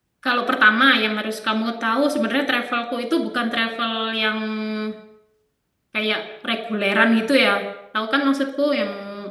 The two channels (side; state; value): both; identical; correlation 1.00